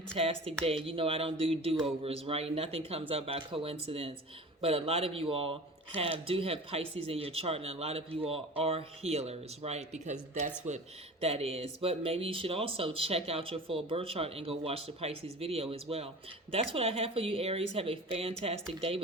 day. You know I don't do do-overs, right? Nothing comes up by coincidence. But a lot of you all do have Pisces in your chart, and a lot of you all are healers, right? Because that's what that is. But maybe you should also check out your full birth chart and go watch the Pisces video as well. That's what I have for you, Aries. Have a fantastic day.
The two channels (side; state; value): both; normal; correlation 0.37